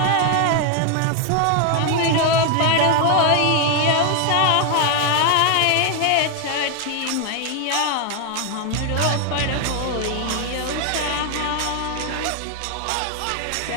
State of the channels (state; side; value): different; both; correlation 0.01